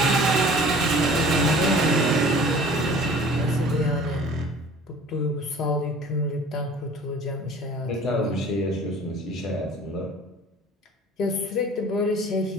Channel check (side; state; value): both; normal; correlation 0.46